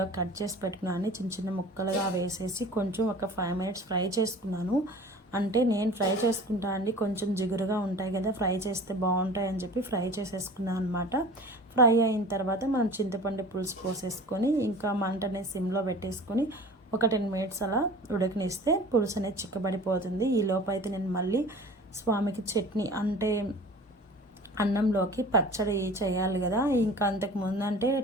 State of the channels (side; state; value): both; normal; correlation 0.41